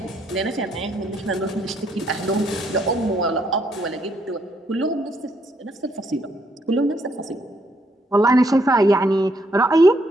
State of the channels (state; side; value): normal; both; correlation 0.72